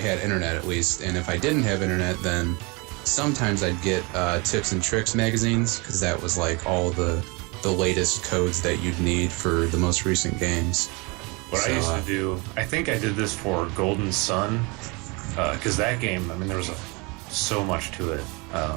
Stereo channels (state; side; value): quieter; left; 28.0 dB